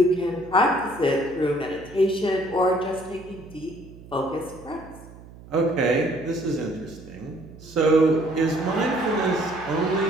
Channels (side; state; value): right; noise; hum, 19 dB below the sound